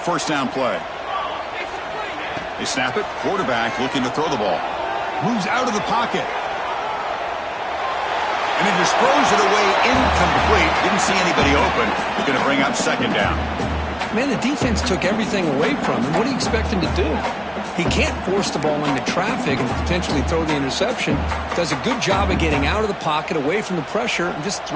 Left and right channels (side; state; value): both; identical; correlation 1.00